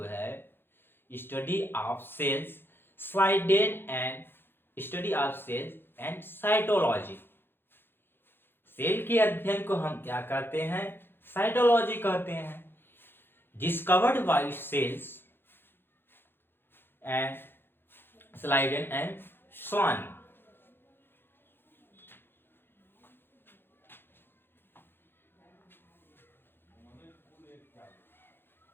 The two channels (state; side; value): late; right; 0.10 ms